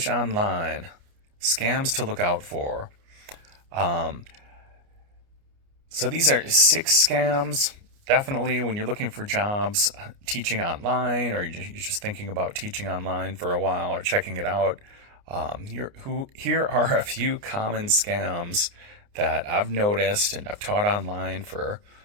online. Scams to look out for. Um, so these are 6 scams. Definitely, when you're looking for jobs, teaching online, or you're just thinking about teaching online for a while or checking it out. Here are a few common scams that I've noticed and I've taught online for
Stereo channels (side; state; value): left; late; 29 ms